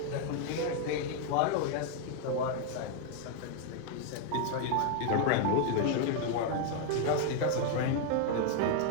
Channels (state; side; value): different; both; correlation 0.00